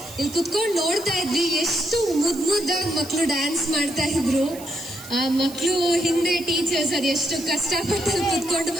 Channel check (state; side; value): noise; right; hiss, 16 dB below the sound